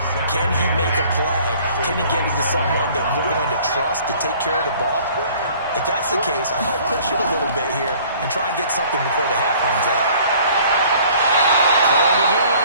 Can he make a play? Can he get into someone that we're going to trust to take care of the ball? If that's the case, I might push it a little bit here and try and get something before the half runs out. Throwing again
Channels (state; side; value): inverted; both; correlation -0.53